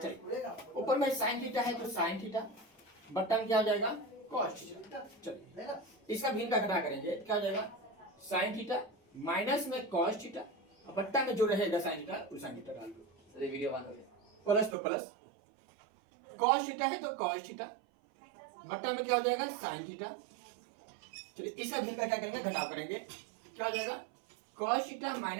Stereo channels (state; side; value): drops out; left; at 14.8 s